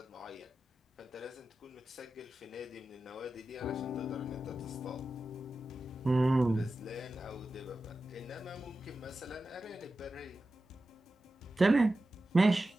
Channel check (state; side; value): normal; both; correlation 0.93